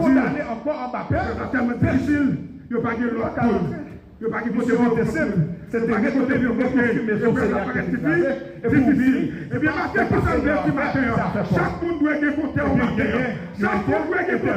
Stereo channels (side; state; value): both; identical; correlation 1.00